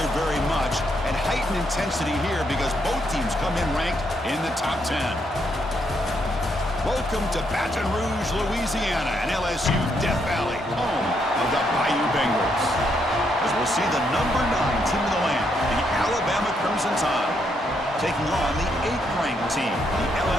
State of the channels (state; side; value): normal; both; correlation 0.76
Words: very much, and heightened intensity here because both teams come in ranked in the top 10. Welcome to Baton Rouge, Louisiana, and LSU Death Valley, home of the Bayou Bengals. As we'll see the number 9 team in the land, the Alabama Crimson Tide, taking on the 8th-ranked team, the